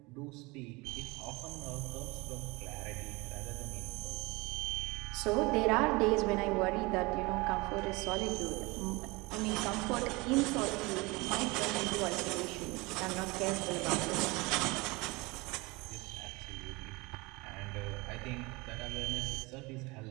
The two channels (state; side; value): quieter; left; 24.6 dB